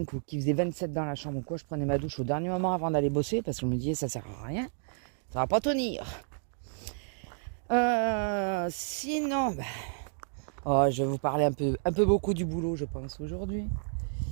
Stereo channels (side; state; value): left; silent; digital silence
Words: ou qu'il faisait 27 dans la chambre ou quoi, je prenais ma douche au dernier moment avant d'aller bosser parce que je me disais ça sert à rien, ça va pas tenir. Sinon, je vais vous parler un peu beaucoup du boulot, je pense, aujourd'hui.